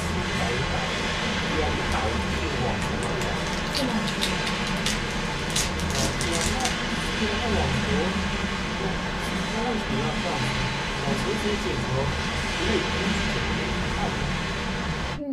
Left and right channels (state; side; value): identical; both; correlation 1.00